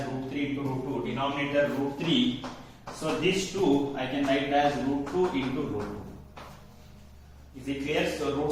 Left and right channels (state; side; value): identical; both; correlation 1.00